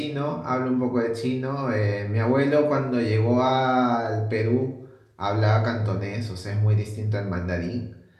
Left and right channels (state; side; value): identical; both; correlation 1.00